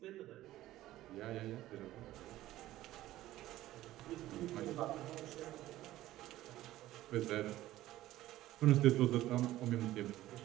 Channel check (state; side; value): quieter; left; 15.2 dB